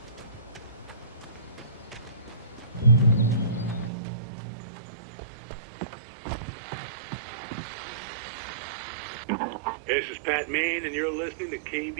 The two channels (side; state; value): left; drops out; at 3.9 s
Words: This is Pat Main, and you're listening to